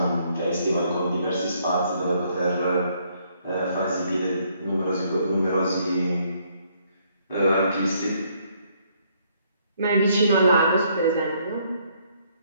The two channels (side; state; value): both; inverted; correlation -0.68